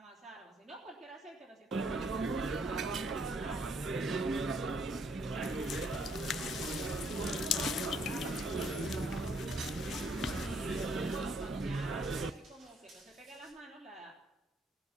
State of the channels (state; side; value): normal; both; correlation 0.68